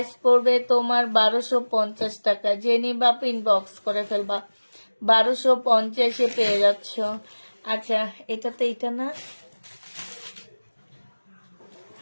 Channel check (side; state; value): both; inverted; correlation -1.00